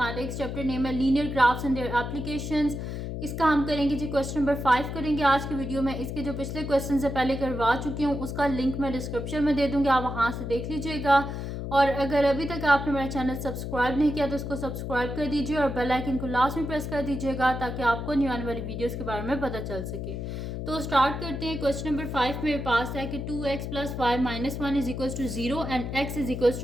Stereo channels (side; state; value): left; noise; hum, 5 dB below the sound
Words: चैप्टर नेम है linear graphs and their applications. इसका हम करेंगे जी क्वेश्चन नंबर 5 करेंगे आज की वीडियो में। इसके जो पिछले क्वेश्चन से पहले करवा चुकी हूँ उसका लिंक मैं डिस्क्रिप्शन में दे दूँगी, आप वहाँ से देख लीजिएगा। और अगर अभी तक आपने मेरा चैनल सब्सक्राइब नहीं किया तो उसको सब्सक्राइब कर दीजिए और बेल आइकन को लास्ट में प्रेस कर दीजिएगा ताकि आपको न्यू आने वाली वीडियोस के बारे में पता चल सके। तो स्टार्ट करते हैं। क्वेश्चन नंबर 5 मेरे पास है कि 2x plus y minus 1 is equals to 0 and x is equals